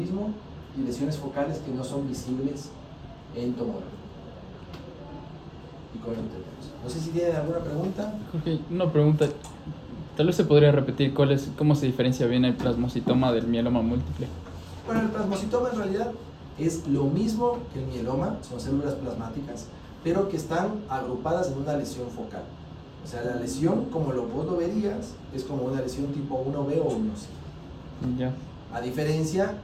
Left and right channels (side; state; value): both; identical; correlation 1.00